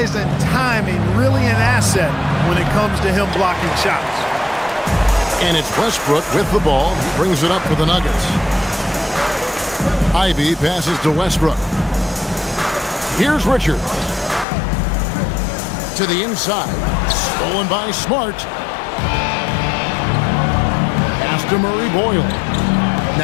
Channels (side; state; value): right; drops out; at 14.5 s